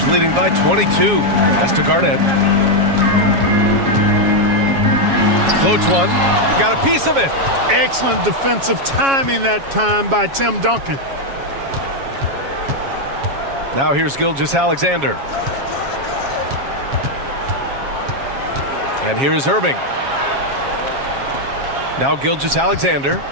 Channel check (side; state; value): left; late; 7.3 ms